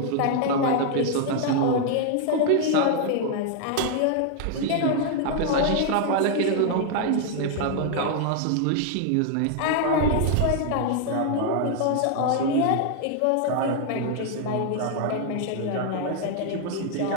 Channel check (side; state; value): both; different; correlation 0.00